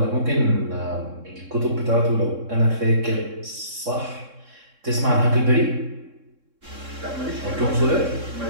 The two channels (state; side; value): late; left; 3.6 ms